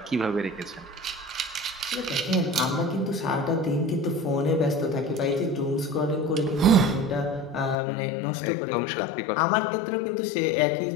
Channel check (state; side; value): drops out; right; at 7.8 s